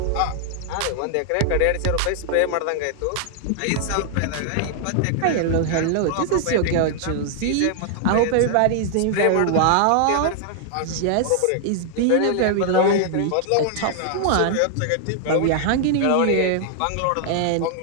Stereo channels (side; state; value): both; different; correlation -0.01